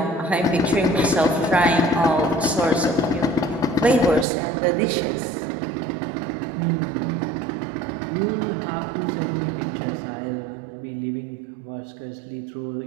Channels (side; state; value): left; drops out; at 4.2 s